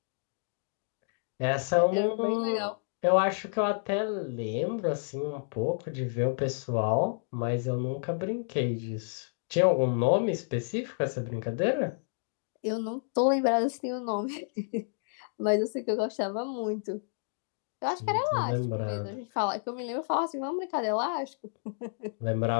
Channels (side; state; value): right; silent; digital silence